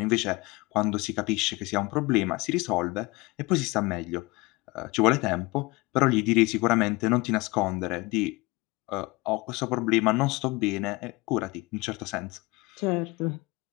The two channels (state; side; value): quieter; right; 23.6 dB